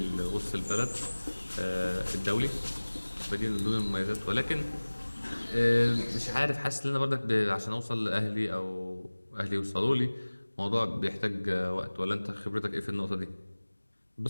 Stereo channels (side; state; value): both; inverted; correlation -1.00